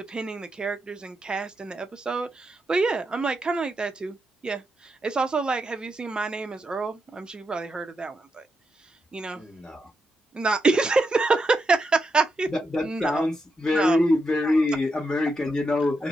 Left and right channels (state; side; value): normal; both; correlation 0.84